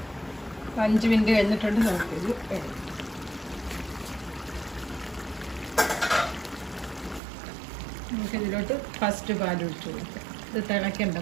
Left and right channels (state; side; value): drops out; left; at 7.2 s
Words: 5 മിനിറ്റ് കഴിഞ്ഞിട്ടുണ്ട്. നമുക്കിത് എടുക്കാം. നമുക്കിതിലോട്ട് ഫസ്റ്റ് പാൽ ഒഴിച്ച് കൊടുക്കാം. ഇത് തിളയ്ക്കണ്ട,